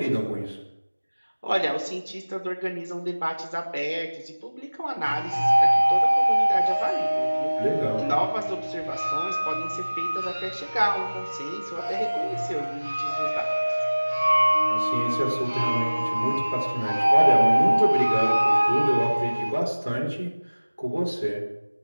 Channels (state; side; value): inverted; both; correlation -1.00